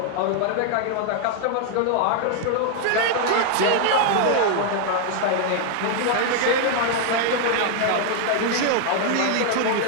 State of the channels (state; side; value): different; both; correlation 0.00